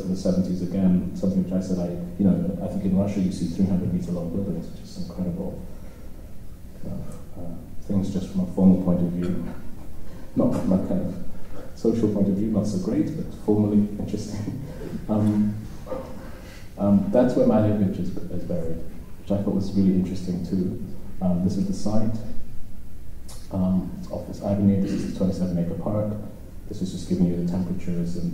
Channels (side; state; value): both; identical; correlation 1.00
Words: in the 70s again, something which I said I think in Russia you see 300-meter long buildings, which is incredible. Things just from a formal point of view, not from a kind of social point of view, not so great, but formally interesting. That's where my lineage is buried, which I thought was really interesting too. This is the site. It's off this avenue. This is the 27-acre park. This is just giving you the temperatures